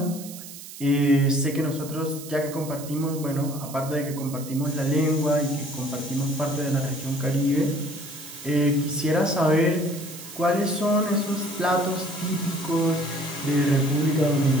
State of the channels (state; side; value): noise; right; hiss, 14 dB below the sound